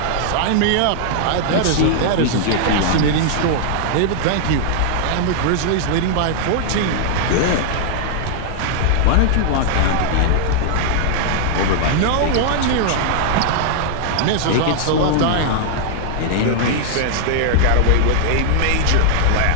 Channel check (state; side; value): different; both; correlation -0.01